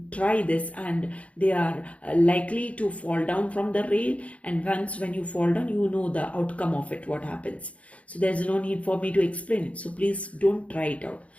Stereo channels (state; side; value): late; right; 0.065 ms